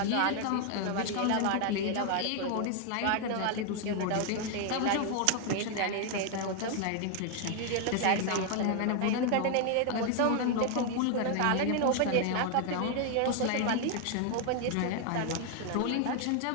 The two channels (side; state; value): both; different; correlation 0.00